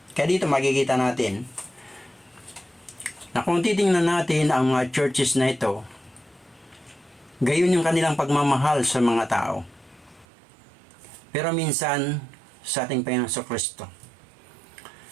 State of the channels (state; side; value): drops out; left; at 10.2 s